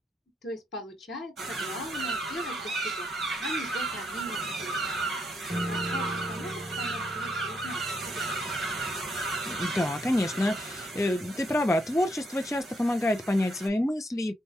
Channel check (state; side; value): normal; both; correlation 0.76